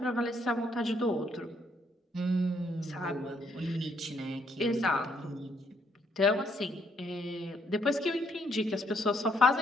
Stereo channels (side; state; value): both; normal; correlation 0.71